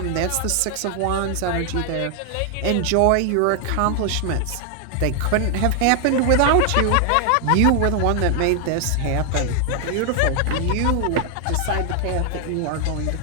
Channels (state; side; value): different; both; correlation 0.00